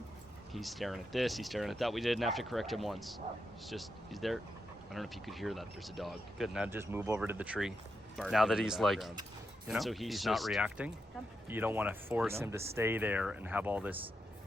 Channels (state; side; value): normal; both; correlation 0.85